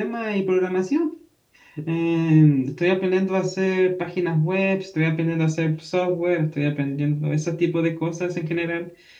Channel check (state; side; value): identical; both; correlation 1.00